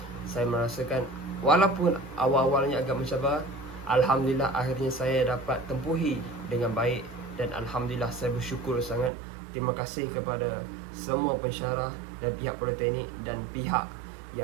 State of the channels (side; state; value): left; drops out; at 9.1 s